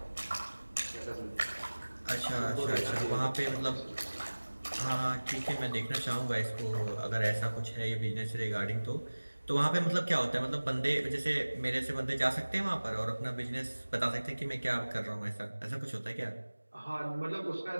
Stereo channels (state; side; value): inverted; both; correlation -1.00